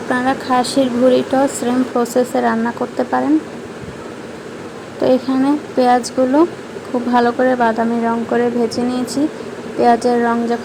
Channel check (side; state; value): both; identical; correlation 1.00